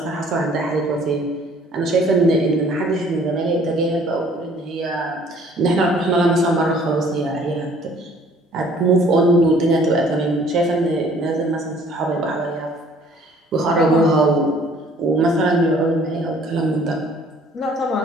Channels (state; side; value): normal; both; correlation 0.56